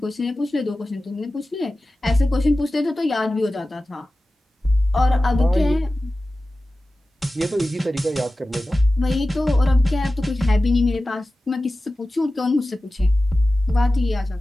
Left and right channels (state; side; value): normal; both; correlation 0.95